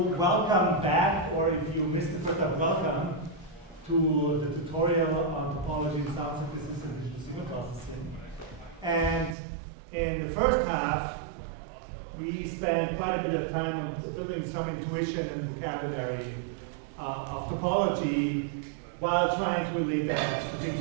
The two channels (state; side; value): drops out; left; at 9.3 s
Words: back, or if you missed the first time, welcome to the tutorial on topology and sound synthesis and digital signal processing. And in the first half, we spent quite a bit of time on building some intuition and vocabulary of topology while trying to relate that to things